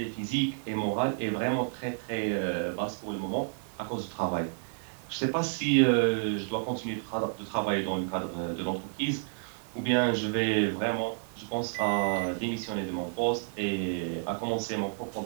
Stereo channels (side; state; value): left; silent; digital silence